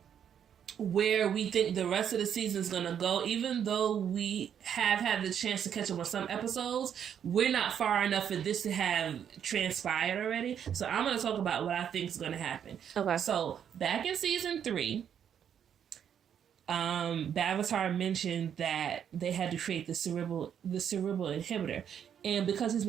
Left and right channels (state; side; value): quieter; left; 8.7 dB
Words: where we think the rest of the season is going to go. Even though we have had the chance to catch up on some episodes, we're not far enough for this to have transpired already. So I'm going to talk about what I think is going to happen. Okay. So back in season 3, Bavatar mentioned that they had to create the cerebral inhibitor. And because his